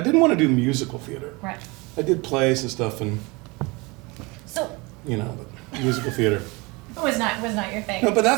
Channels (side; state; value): left; quieter; 25.8 dB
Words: didn't want to do musical theater. Right. I did plays and stuff, and So. But musical theater. Was not your thing. No, but